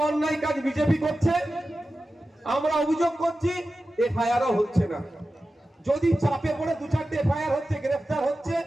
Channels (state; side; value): normal; both; correlation 0.93